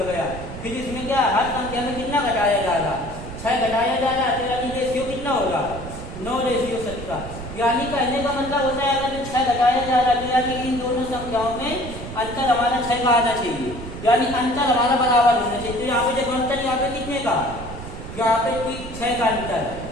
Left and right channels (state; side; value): noise; right; rumble, 11 dB below the sound